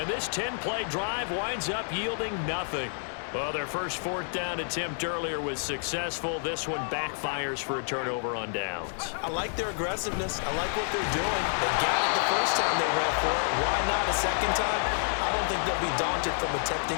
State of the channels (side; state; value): right; silent; 59 dB below the other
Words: this 10-play drive winds up yielding nothing. Well, their first 4th down attempt earlier was successful. This one backfires for a turnover on downs. I like their aggressiveness. I like what they're doing. They got it the first time they went for it. Why not a second time? I don't think they'll be daunted from attempting